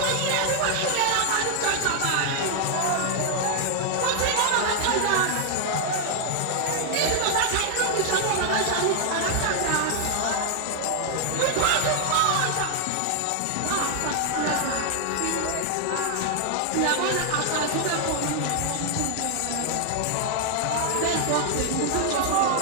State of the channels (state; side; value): different; both; correlation 0.00